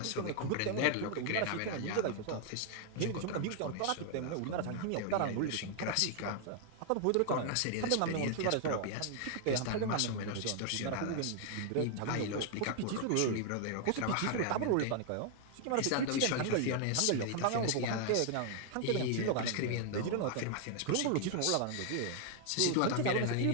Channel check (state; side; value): different; both; correlation 0.00